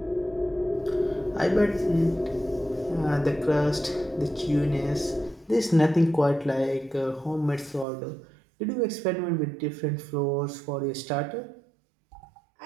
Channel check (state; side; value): drops out; left; at 7.9 s